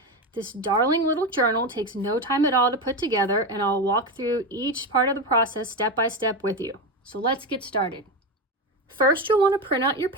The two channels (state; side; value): normal; both; correlation 0.16